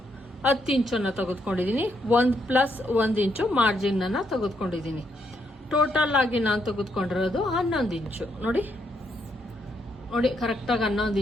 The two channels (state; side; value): normal; both; correlation 0.76